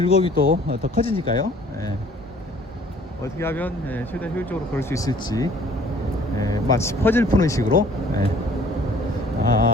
또 더 커지니까요. 어떻게 하면 최대한 효율적으로 걸을 수 있을지, 마치 퍼즐 푸는 식으로.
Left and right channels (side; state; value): both; normal; correlation 0.55